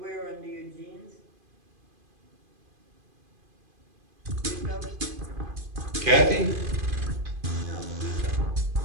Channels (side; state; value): left; late; 2.5 ms